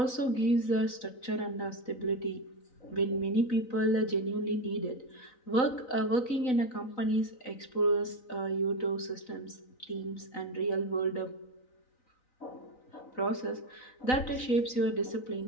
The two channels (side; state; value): right; late; 3.9 ms